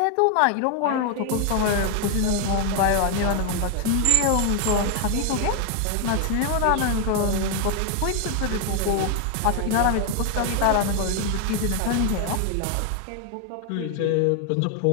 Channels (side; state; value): both; different; correlation 0.01